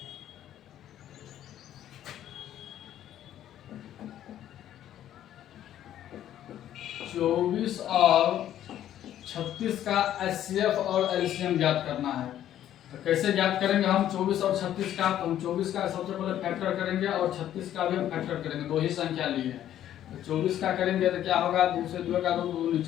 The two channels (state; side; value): quieter; right; 11.6 dB